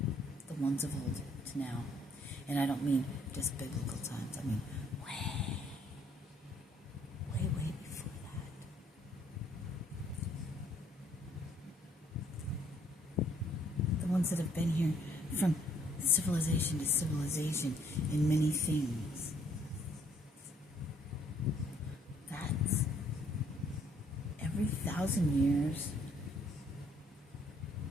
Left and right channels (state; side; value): normal; both; correlation 0.65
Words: the ones of old to now. And I don't mean just biblical times. I mean way before that. The ones that have been here from civilization to civilization in many things. That's every 1,000 years.